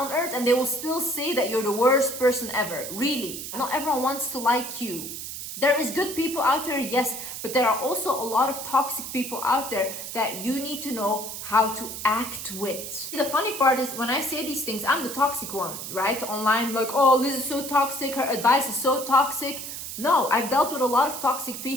earth and they will still say that you're the worst person ever. Really. Not everyone wants to like you. There is good people out there, yes, but there are also a lot of toxic people out there that you need to know how to act with. The funny part is when I say these things, I'm the toxic one, right? Online, like, oh, Liz is so toxic, her advice is so toxic. No, I've dealt with a lot of toxic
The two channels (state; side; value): noise; right; hiss, 8 dB below the sound